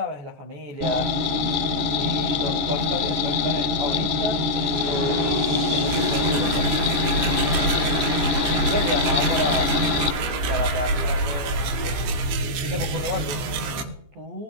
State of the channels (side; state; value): left; late; 14 ms